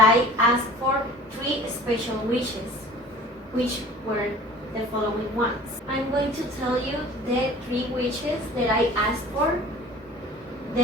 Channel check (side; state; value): both; normal; correlation 0.44